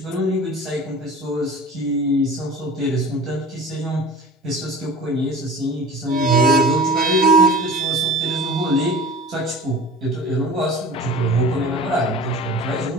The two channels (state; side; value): normal; both; correlation 0.39